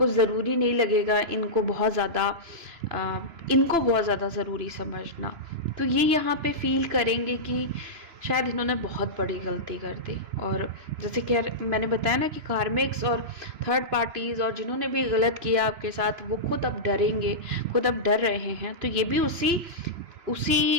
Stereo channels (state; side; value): late; left; 3.0 ms